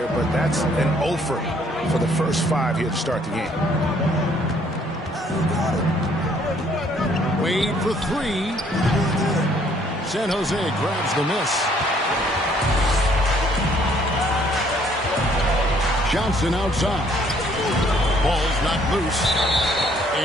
but that's an offer for the first 5 here to start the game. Wade for 3. San Jose grabs the miss. Johnson outside. Ball's not loose.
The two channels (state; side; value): normal; both; correlation 0.63